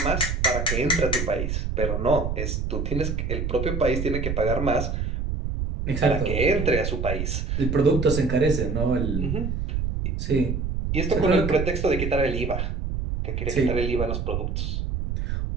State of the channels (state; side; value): noise; right; rumble, 2 dB below the sound